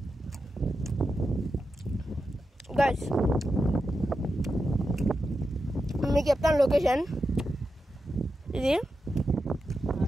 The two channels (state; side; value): normal; both; correlation 0.89